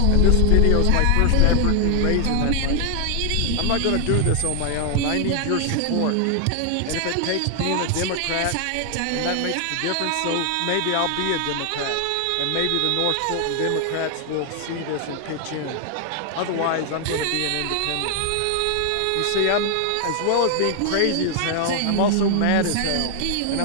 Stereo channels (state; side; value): different; both; correlation 0.00